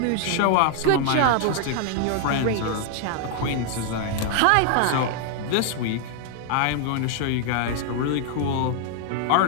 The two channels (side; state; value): both; different; correlation 0.00